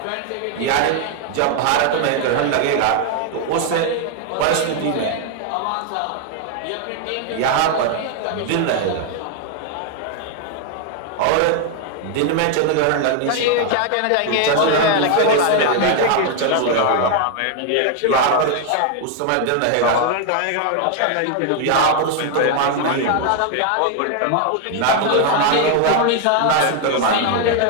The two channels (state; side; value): different; both; correlation 0.01